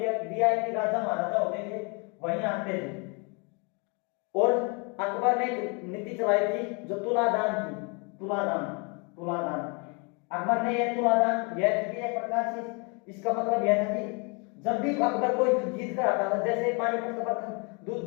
वीआईपी राजा महाराजा होते थे वहीं आते थे। और अकबर ने एक नीति चलाई थी जो तुलादान थी, तुलादान, तुलादान। अकबर ने यह तुलादान यह थी एक प्रकार से, इसका मतलब यह था कि जब भी अकबर कोई युद्ध जीत कर आता था, जैसे पानीपत का प्रथम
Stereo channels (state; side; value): quieter; right; 33.3 dB